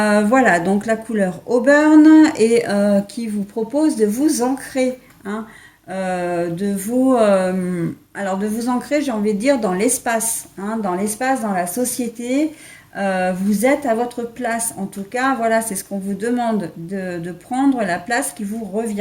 donc la couleur Auburn et qui vous propose de vous ancrer, hein, de vous ancrer, j'ai envie de dire, dans l'espace, hein, dans l'espace, dans la société. Vous êtes à votre place. En tout cas, voilà, c'est ce qu'on vous demande de prendre la place qui vous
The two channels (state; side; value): identical; both; correlation 1.00